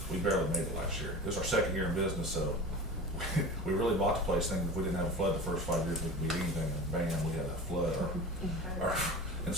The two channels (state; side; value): normal; both; correlation 0.33